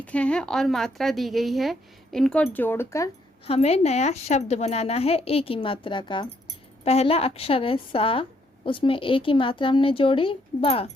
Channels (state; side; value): normal; both; correlation 0.71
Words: हैं और मात्रा दी गई है, इनको जोड़कर हमें नया शब्द बनाना है ए की मात्रा का। पहला अक्षर है सा, उसमें ए की मात्रा हमने जोड़ी बा।